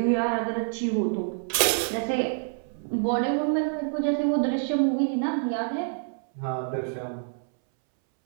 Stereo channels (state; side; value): silent; left; 60 dB below the other